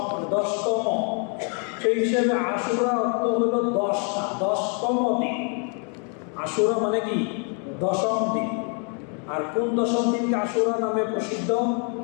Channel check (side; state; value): right; quieter; 39.6 dB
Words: 10তম। সেই হিসেবে আশুরা অর্থ হলো 10টা, 10তম দিন। আশুরা মানে কি? 10ম দিন। আর কোন 10ম দিনকে আশুরা নামে প্রসিদ্ধ?